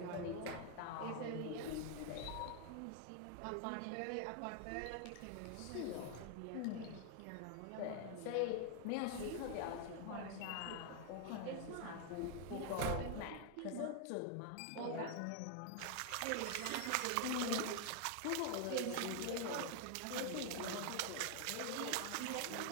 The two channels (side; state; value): both; different; correlation 0.00